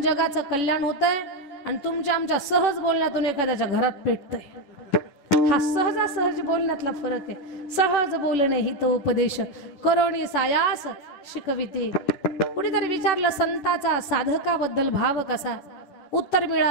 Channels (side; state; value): right; late; 10 ms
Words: जगाचं कल्याण होतंय आणि तुमच्या आमच्या सहज बोलण्यातून एखाद्याच्या घरात पेटतंय. हा सहजासहज बोलण्यातला फरक आहे. सहज बोलणे हित उपदेश करोणी सायास शिकविते. कुणीतरी विचारलं संताचा साधकाबद्दल भाव कसा. उत्तर